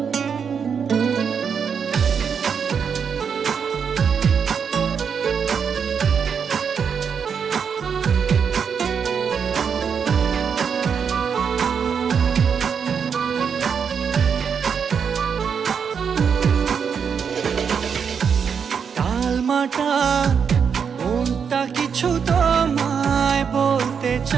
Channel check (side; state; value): left; quieter; 6.7 dB